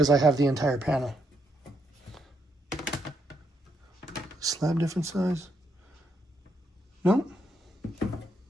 I have the entire panel. Slab different size? No, they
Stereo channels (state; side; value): normal; both; correlation 0.78